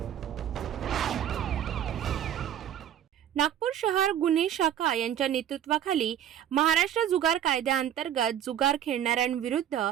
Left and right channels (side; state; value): left; quieter; 10.4 dB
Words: नागपूर शहर गुन्हे शाखा यांच्या नेतृत्वाखाली महाराष्ट्र जुगार कायद्याअंतर्गत जुगार खेळणाऱ्यांविरुद्ध